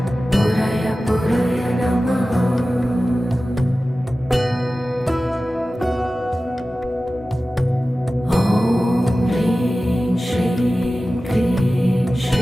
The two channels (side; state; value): both; normal; correlation 0.95